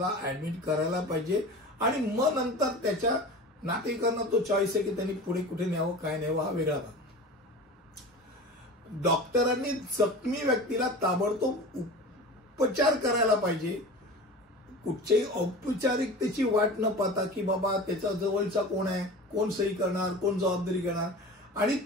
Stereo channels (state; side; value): normal; both; correlation 0.34